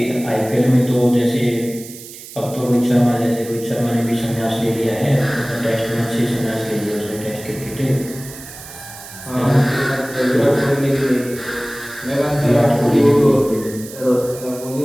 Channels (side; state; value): right; noise; hiss, 15 dB below the sound